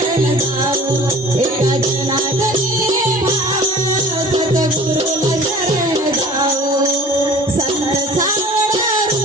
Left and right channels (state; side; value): normal; both; correlation 0.44